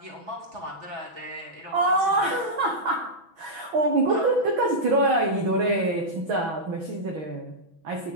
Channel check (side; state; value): left; late; 6.1 ms